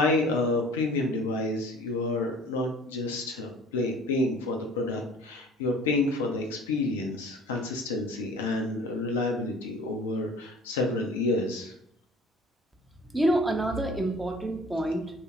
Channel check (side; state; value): both; normal; correlation 0.48